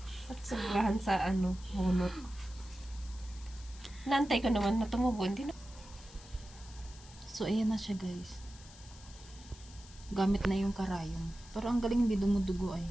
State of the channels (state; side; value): noise; left; hiss, 20 dB below the sound